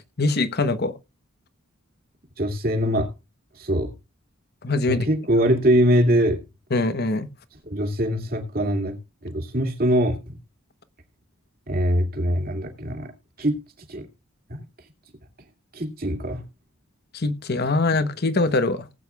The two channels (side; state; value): both; normal; correlation 0.53